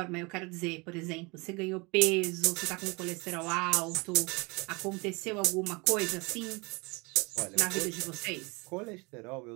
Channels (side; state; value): left; quieter; 27.5 dB